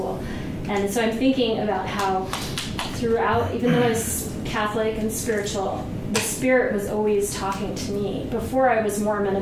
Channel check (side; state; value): both; identical; correlation 1.00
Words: And so I'm thinking about how throughout, even though I was Catholic and spiritual, the Spirit was always talking to me. Before I was Mormon